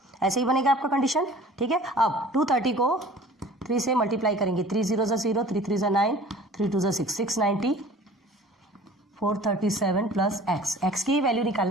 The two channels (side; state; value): both; normal; correlation 0.46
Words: ऐसे ही बनेगा आपका कंडीशन। ठीक है, अब 230 को 3 से मल्टीप्लाई करेंगे, 3 0 0, 3 3 9, 3 2 6, 690, 437 प्लस एक्स, एक्स की वैल्यू